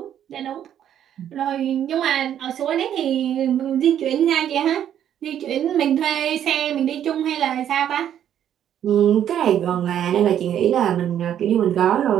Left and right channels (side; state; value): left; quieter; 10.1 dB